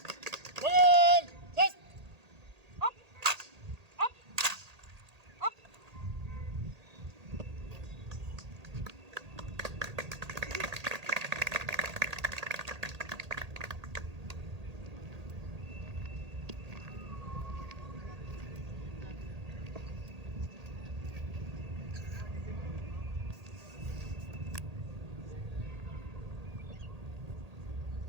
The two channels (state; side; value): late; left; 1.8 ms